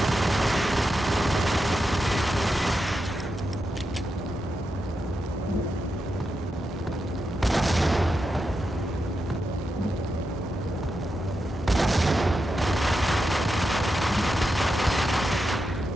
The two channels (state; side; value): normal; both; correlation 0.87